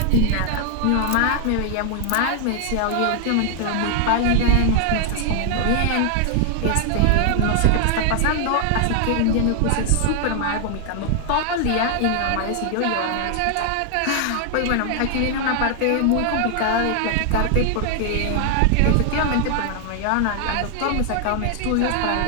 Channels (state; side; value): different; both; correlation 0.00